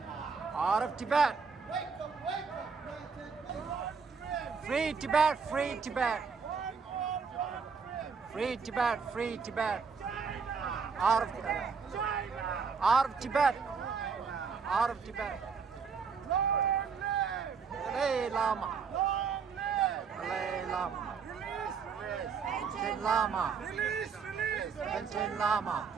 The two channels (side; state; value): left; quieter; 5.7 dB